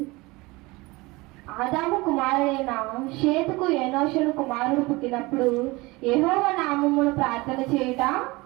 ఆదాము కుమారుడైన షేతుకు ఏనోషును కుమారుడు పుట్టినప్పుడు యెహోవా నామమున ప్రార్థన చేయుట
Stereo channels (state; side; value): quieter; left; 22.8 dB